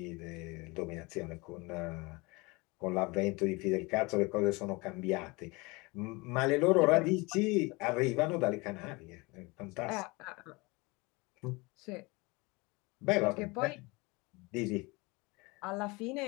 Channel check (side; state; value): right; quieter; 25.5 dB